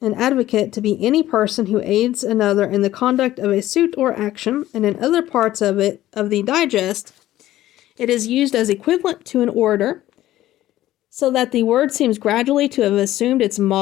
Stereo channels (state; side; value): quieter; right; 14.5 dB